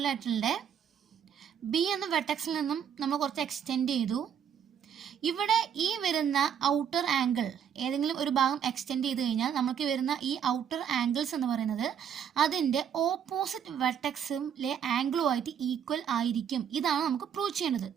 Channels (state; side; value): quieter; left; 8.4 dB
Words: B എന്ന വെർട്ടെക്സിൽ നിന്നും നമ്മൾ കുറച്ച് എക്സ്റ്റെൻഡ് ചെയ്തു. ഇവിടെ ഈ വരുന്ന ഔട്ടർ ആംഗിൾ ഏതെങ്കിലും ഒരു ഭാഗം എക്സ്റ്റെൻഡ് ചെയ്ത് കഴിഞ്ഞാൽ നമുക്ക് വരുന്ന ഈ ഔട്ടർ ആംഗിൾസ് എന്ന് പറയുന്നത് അതിൻ്റെ ഓപ്പോസിറ്റ് വെർട്ടെക്സിലെ ആംഗിളുമായിട്ട് ഈക്വൽ ആയിരിക്കും. ഇതാണ് നമുക്ക് പ്രൂവ് ചെയ്യേണ്ടത്.